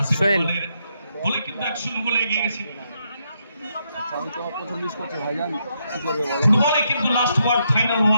আসিফ সোহেল। ইকবালের গোলে কিন্তু 1-0 গোলে এগিয়ে গেছে। ফুটবলে কিন্তু last word, final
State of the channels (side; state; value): both; inverted; correlation -0.78